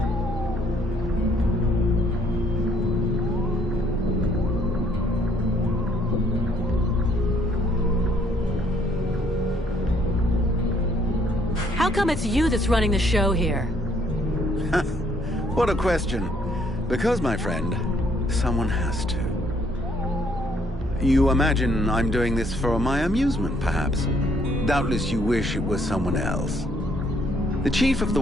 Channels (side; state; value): both; normal; correlation 0.66